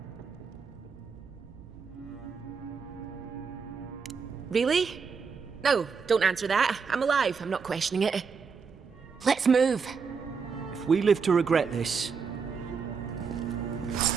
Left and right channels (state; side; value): quieter; left; 5.6 dB